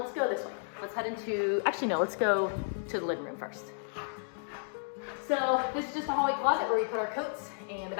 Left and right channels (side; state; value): right; silent; digital silence